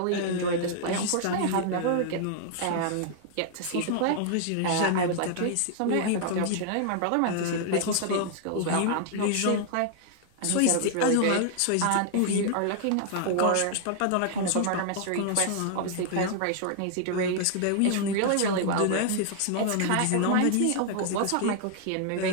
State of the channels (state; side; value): different; both; correlation 0.00